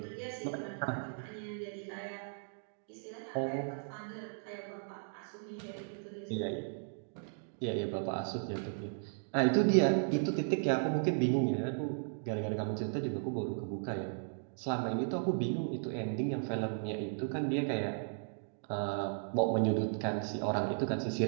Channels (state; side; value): silent; left; digital silence